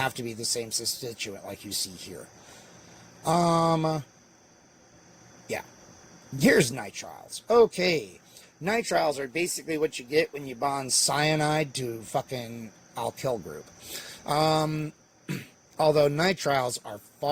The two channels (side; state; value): both; identical; correlation 1.00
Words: to be the same substituent like you see here. Yeah. Here's nitriles. Okay. Nitriles are basically what you get when you bond cyanide to fucking alkyl group. Although nitriles are